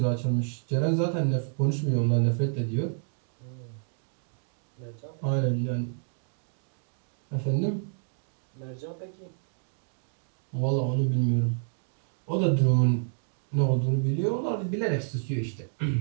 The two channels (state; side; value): silent; left; digital silence